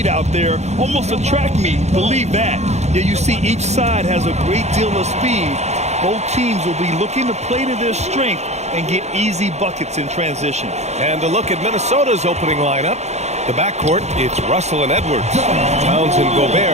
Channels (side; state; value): left; late; 0.32 ms